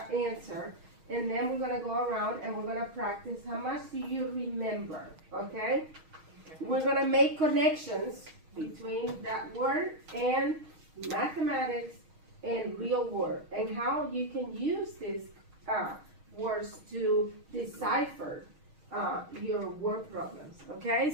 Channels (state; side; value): late; left; 6.4 ms